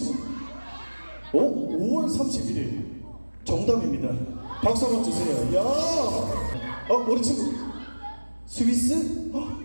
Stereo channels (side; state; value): both; inverted; correlation -1.00